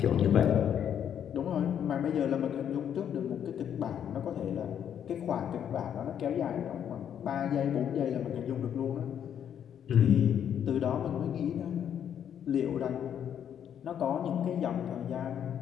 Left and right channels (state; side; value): quieter; right; 9.1 dB